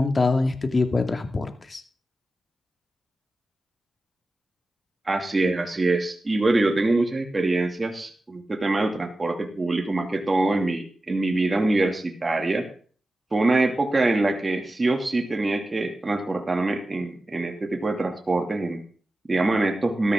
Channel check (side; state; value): both; normal; correlation 0.93